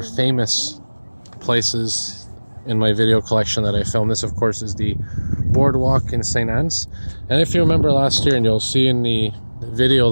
famous places in my video collection that I filmed. This, of course, is the boardwalk in St. Anne's. And if you remember last year, and you'll see in the video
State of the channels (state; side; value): inverted; both; correlation -1.00